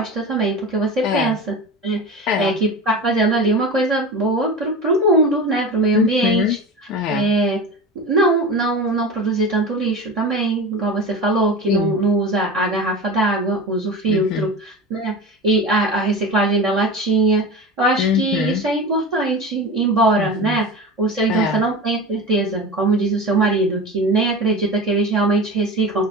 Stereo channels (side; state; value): both; normal; correlation 0.30